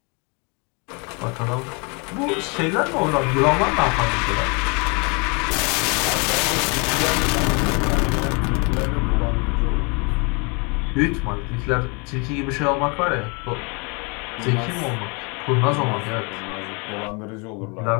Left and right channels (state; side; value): quieter; right; 32.2 dB